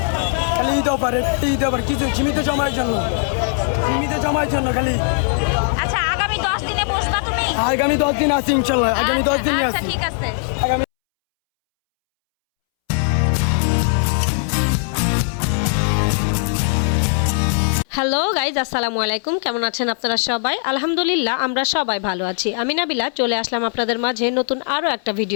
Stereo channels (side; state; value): right; silent; 66 dB below the other